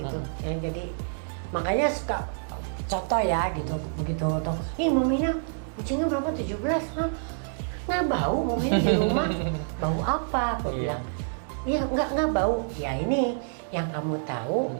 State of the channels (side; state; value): left; silent; digital silence